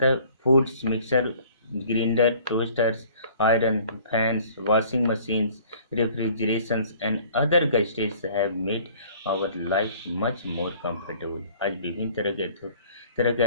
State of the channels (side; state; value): both; inverted; correlation -0.53